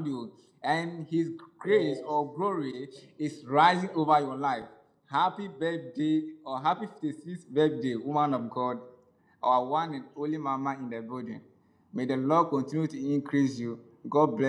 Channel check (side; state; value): both; identical; correlation 1.00